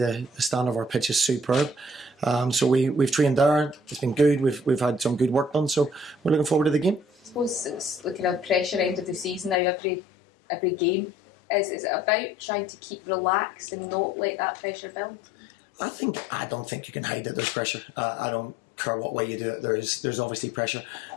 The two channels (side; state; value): right; drops out; at 9.6 s